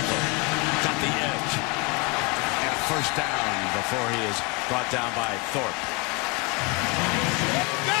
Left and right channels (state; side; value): quieter; right; 28.2 dB